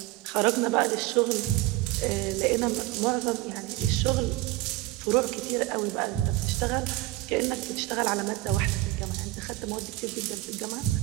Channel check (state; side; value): quieter; left; 18.1 dB